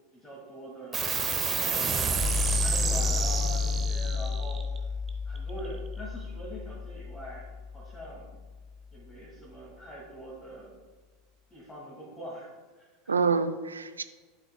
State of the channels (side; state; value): both; normal; correlation 0.46